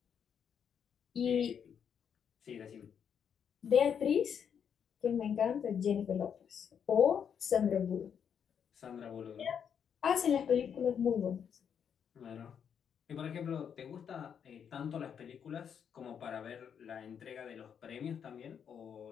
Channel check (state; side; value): quieter; right; 7.8 dB